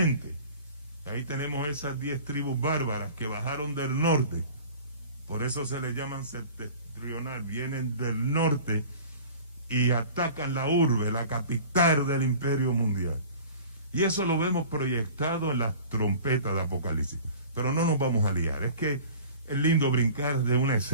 Ahí tenemos esas 10 tribus bárbaras que bajaron del norte. Por eso se les llaman septentrional. Vienen del norte y atacan la urbe, la capital del imperio mundial. Y eso lo vemos proyectado en las trompetas de Apocalipsis. Pero no nos vamos a liar. Es que es lindo brincar de una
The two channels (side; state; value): both; inverted; correlation -0.42